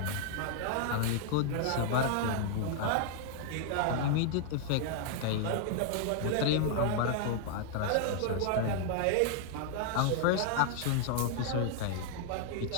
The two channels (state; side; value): different; both; correlation -0.01